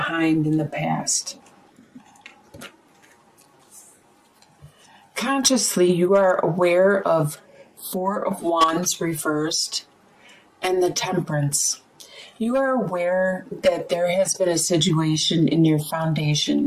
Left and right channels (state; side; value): identical; both; correlation 1.00